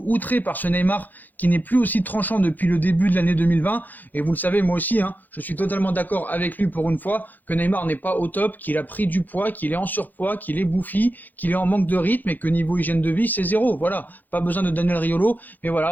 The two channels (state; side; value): late; right; 0.085 ms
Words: outré par ce Neymar qui n'est plus aussi tranchant depuis le début de l'année 2020. Et vous le savez, moi aussi, je suis totalement d'accord avec lui pour une fois que Neymar n'est pas au top, qu'il a pris du poids, qu'il est en surpoids, qu'il est bouffi, qu'il est en manque de rythme et que niveau hygiène de vie, c'est 0. Voilà, pas besoin de Daniel Riolo, mais